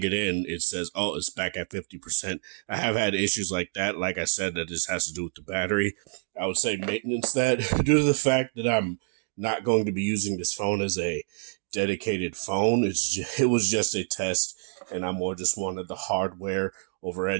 it in, it says, oh, it's back at 50%. I have had issues like that. Like I said, that just has to do with the battery. I would say maintenance that due to the fact that I'm not going to be using this phone as a dedicated phone. It was just a test, and I more just wanted the hardware over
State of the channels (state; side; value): silent; left; 60 dB below the other